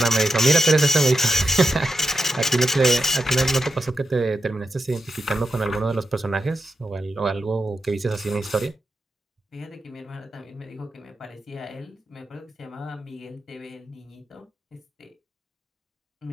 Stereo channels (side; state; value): both; normal; correlation 0.87